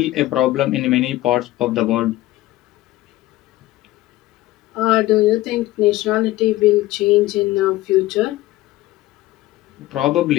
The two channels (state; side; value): quieter; right; 16.9 dB